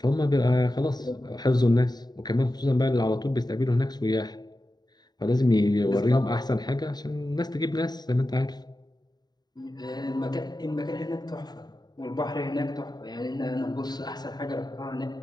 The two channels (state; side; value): late; right; 0.20 ms